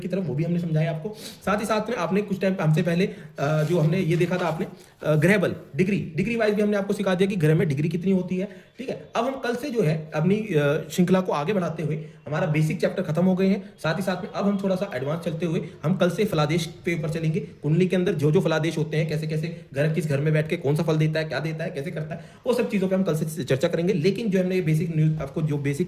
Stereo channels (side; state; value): both; identical; correlation 1.00